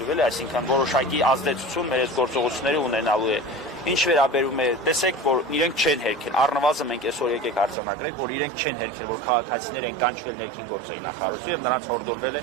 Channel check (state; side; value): drops out; left; at 7.8 s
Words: էլի, այսինքն որոշակի ազդեցություն մեր այս գործողությունները ունենալու է։ Ինչ վերաբերում է, տեսեք, որ իրենք չեն հերքել, առնվազն մենք այսօր եկեք արձանագրենք, որ իրենք չեն հերքել, որ քաղաքացիներ են կանչվել ներքին գործերի նախարարություն եւ նրանց հորդորվել